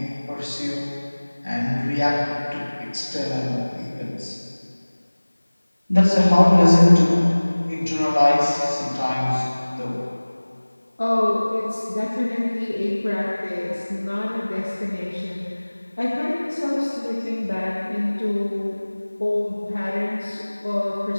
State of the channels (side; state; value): both; inverted; correlation -1.00